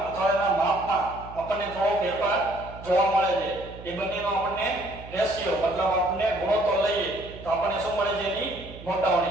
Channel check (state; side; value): noise; right; hum, 15 dB below the sound